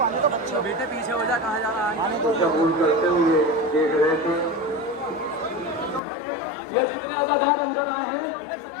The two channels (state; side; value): drops out; right; at 6.0 s